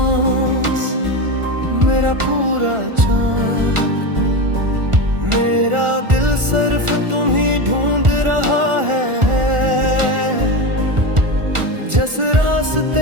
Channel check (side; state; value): left; late; 1.4 ms